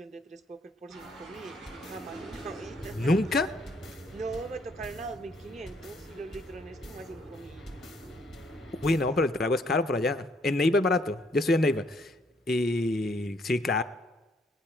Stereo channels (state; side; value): normal; both; correlation 0.68